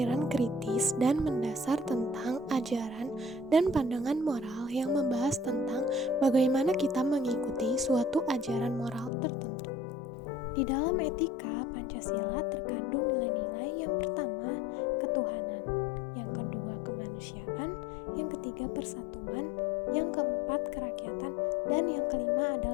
kritis dan mendasar tentang ajaran dan pandangan moral yang membahas tentang bagaimana kita mengikuti suatu ajaran moral tertentu. Di dalam etika, Pancasila terkandung nilai-nilai yang pertama, ketuhanan, yang kedua, kemanusiaan, yang ketiga, persatuan, yang keempat, kerakyatan, dan yang kelima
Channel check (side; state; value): right; drops out; at 9.1 s